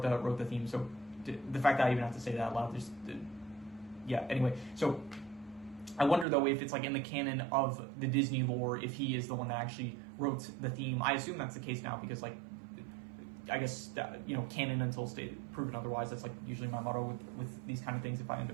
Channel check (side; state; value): left; drops out; at 6.2 s